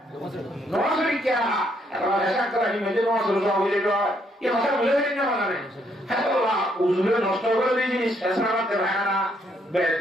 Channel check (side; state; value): both; normal; correlation 0.72